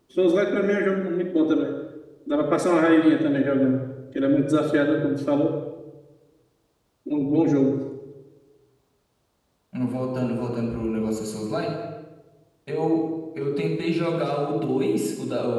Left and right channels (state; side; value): identical; both; correlation 1.00